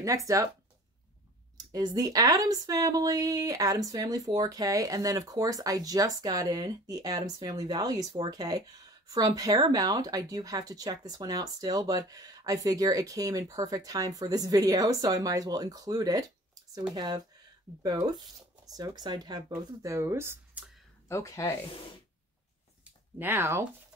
next up is the Addams Family 4K. And then, of course, I just got in the Addams Family Values 4K from Paramount. I do have to check this one out still, but I figure it came in perfect time for this video, so I might as well include it. So we have both. So excited to have both of those. Okay. Now,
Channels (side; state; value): both; normal; correlation 0.45